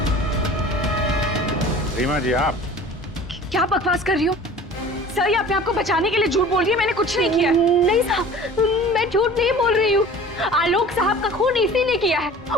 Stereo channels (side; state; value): both; normal; correlation 0.43